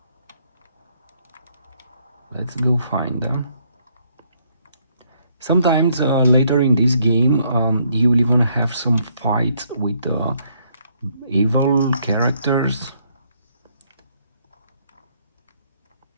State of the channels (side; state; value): both; inverted; correlation -0.70